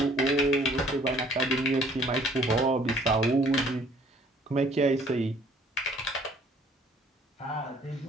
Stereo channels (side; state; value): both; normal; correlation 0.58